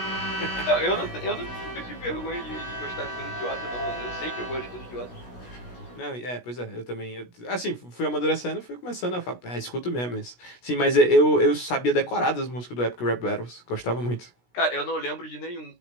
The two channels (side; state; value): right; late; 16 ms